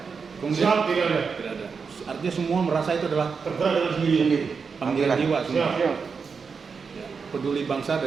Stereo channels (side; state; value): left; quieter; 5.5 dB